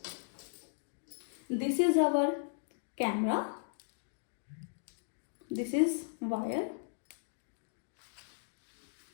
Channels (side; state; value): right; silent; digital silence